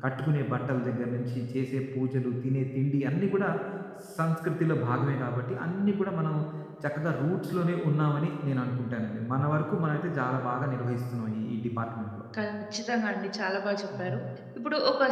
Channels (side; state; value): both; identical; correlation 1.00